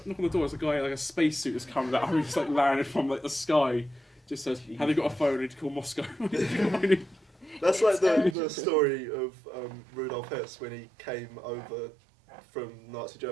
the door. There's a guy a spacesuit has come out, who just landed from the sky. Just says, "Have you got a phone? I need to call Moscow." That's like It's the urgent. story of Rudolf Hess when he came over from Nazi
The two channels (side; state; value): left; drops out; at 8.3 s